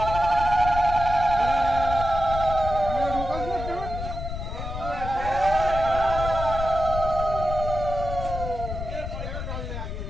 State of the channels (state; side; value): noise; left; rumble, 6 dB below the sound